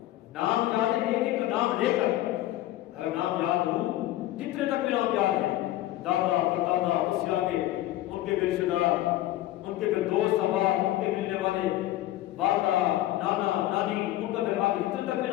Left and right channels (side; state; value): right; quieter; 15.1 dB